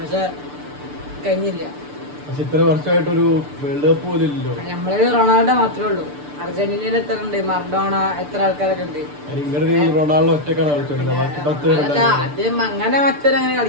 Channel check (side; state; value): left; late; 6.8 ms